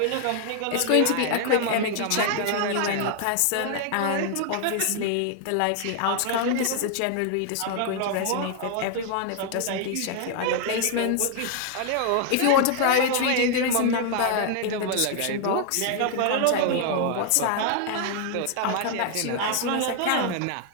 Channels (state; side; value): different; both; correlation 0.00